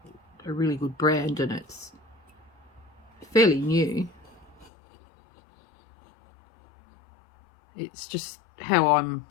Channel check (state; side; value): drops out; right; at 4.7 s